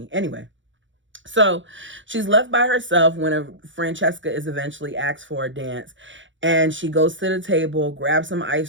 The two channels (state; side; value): late; left; 0.55 ms